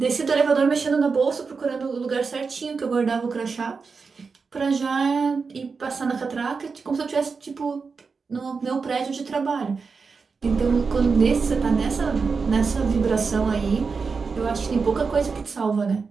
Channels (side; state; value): left; quieter; 4.9 dB